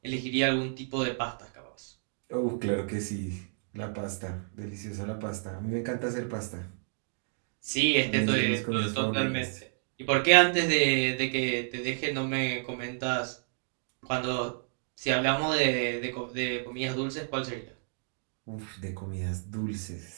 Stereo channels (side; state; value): left; silent; digital silence